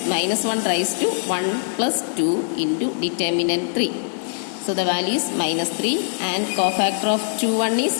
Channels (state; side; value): silent; right; 64 dB below the other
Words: minus 1 raised to 1 plus 2 into determinant 3. So the value is minus 3, and cofactor of 21